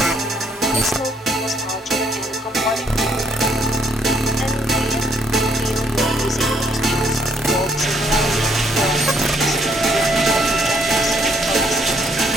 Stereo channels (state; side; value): normal; both; correlation 0.69